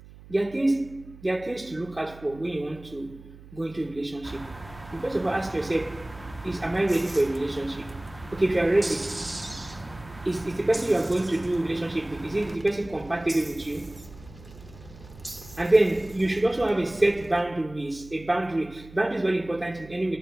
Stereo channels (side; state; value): right; noise; hum, 19 dB below the sound